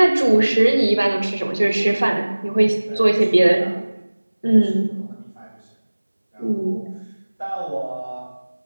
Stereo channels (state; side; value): inverted; both; correlation -1.00